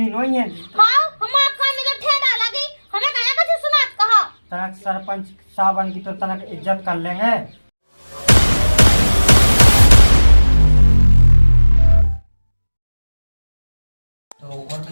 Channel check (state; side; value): inverted; both; correlation -1.00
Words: नहीं है। हाँ हमारा कान में तो ठेडा लगी, हमें कहा कुछ सुना कहा। तनक सरपंच साहब की तो तनक इज्जत कर लेंगे।